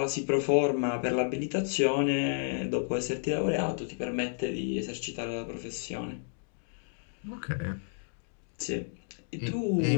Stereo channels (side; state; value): right; silent; digital silence